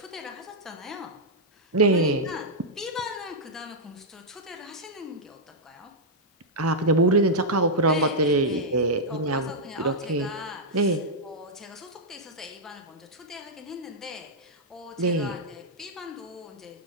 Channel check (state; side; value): normal; both; correlation -0.06